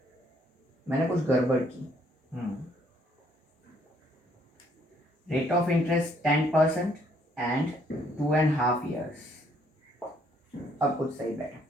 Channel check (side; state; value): both; normal; correlation 0.67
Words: मैंने कुछ गड़बड़ की। Rate of interest 10% and 2.5 years, अब कुछ सही बैठा,